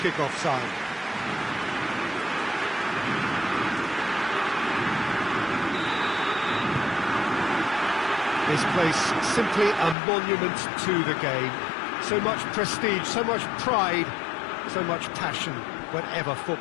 kick-off time. This place simply a monument to the game. So much prestige, so much pride, so much passion whenever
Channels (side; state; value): right; drops out; at 10.0 s